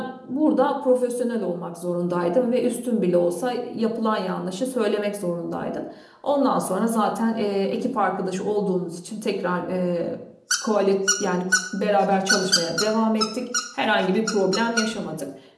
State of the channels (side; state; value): both; identical; correlation 1.00